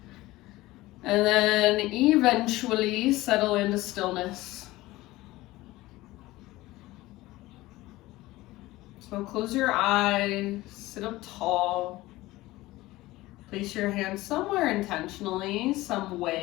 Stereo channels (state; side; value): quieter; right; 18.4 dB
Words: And then eventually settle into stillness. So close your eyes, sit up tall. Place your hands somewhere intentionally, some